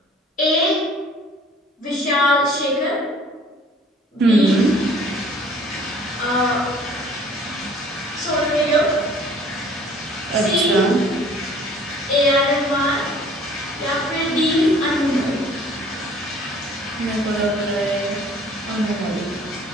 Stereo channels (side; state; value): both; normal; correlation 0.53